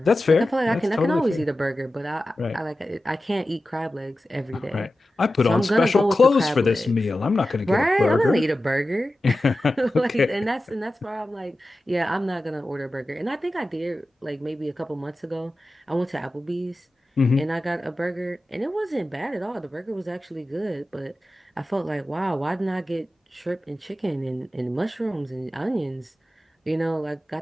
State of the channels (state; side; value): normal; both; correlation 0.94